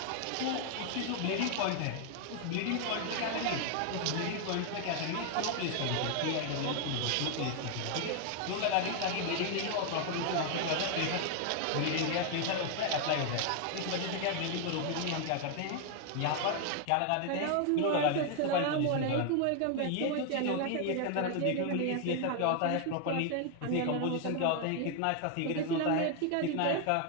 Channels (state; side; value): different; both; correlation 0.00